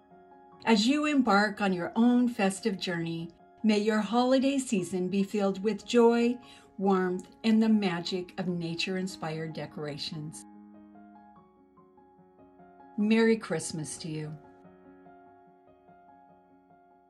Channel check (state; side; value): identical; both; correlation 1.00